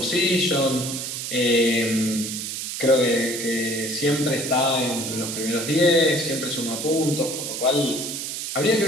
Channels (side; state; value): right; noise; hiss, 5 dB below the sound